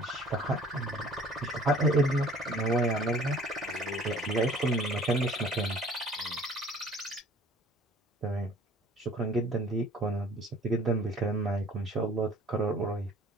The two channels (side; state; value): both; normal; correlation 0.52